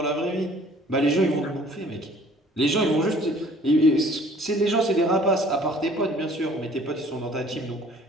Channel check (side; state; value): both; normal; correlation 0.54